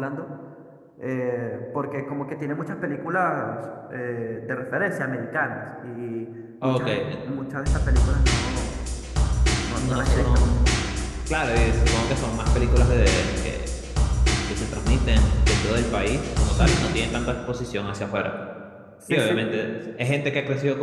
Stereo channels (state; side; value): identical; both; correlation 1.00